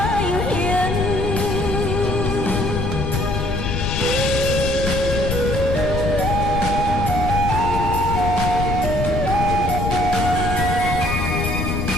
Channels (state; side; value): noise; left; rumble, 2 dB below the sound